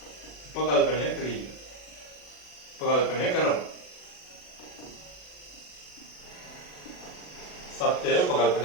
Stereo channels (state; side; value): late; right; 40 ms